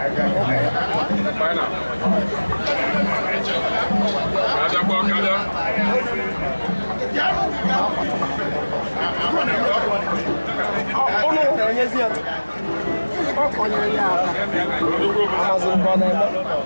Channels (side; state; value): both; inverted; correlation -1.00